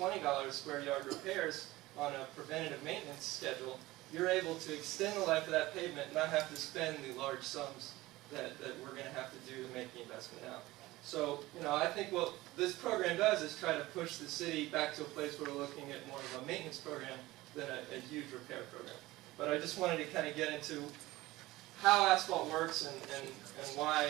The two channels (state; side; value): quieter; left; 18.6 dB